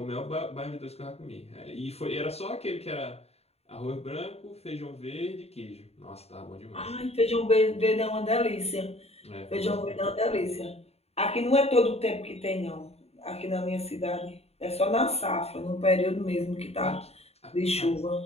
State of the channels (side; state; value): right; late; 0.30 ms